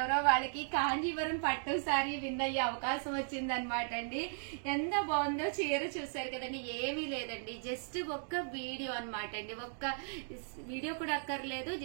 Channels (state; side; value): silent; left; digital silence